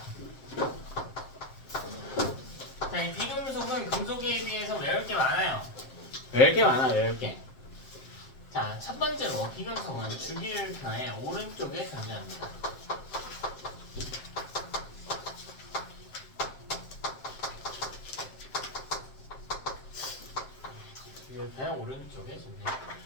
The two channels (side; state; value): right; late; 7.6 ms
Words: 자, 이 비금속은 금속에 비해서 외울 게 많아요. 외울 게 많아, 외울 게. 자, 첫 번째로 비금속은 주기율표의 오른쪽에 존재합니다. 주기율표의 오른쪽에 존재.